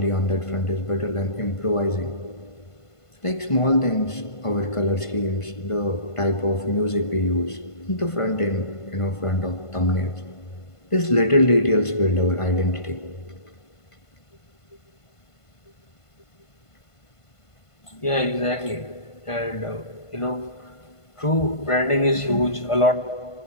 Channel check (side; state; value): right; late; 1.5 ms